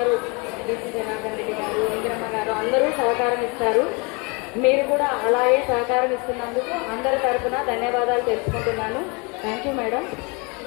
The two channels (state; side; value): quieter; right; 30.3 dB